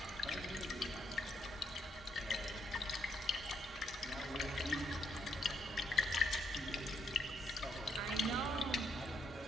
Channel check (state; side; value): normal; both; correlation 0.74